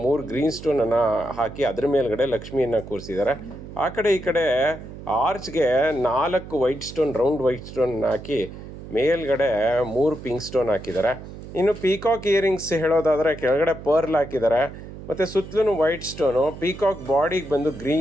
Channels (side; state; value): right; noise; hum, 13 dB below the sound